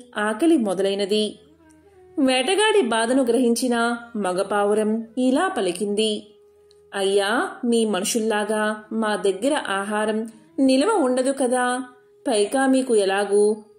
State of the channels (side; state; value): both; identical; correlation 1.00